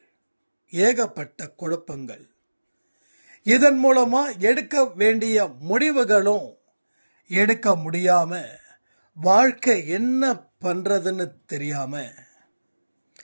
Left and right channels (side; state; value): both; inverted; correlation -1.00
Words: ஏகப்பட்ட குழப்பங்கள். இதன் மூலமா எடுக்க வேண்டிய முடிவுகளும் எடுக்க முடியாம, வாழ்க்கை என்ன பண்றதுன்னு தெரியாம,